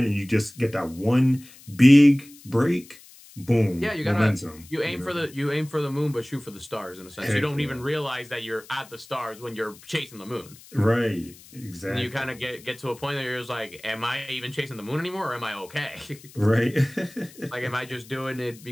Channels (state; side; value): noise; left; hiss, 22 dB below the sound